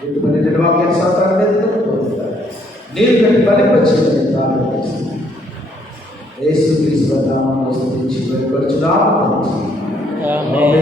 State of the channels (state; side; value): normal; both; correlation 0.68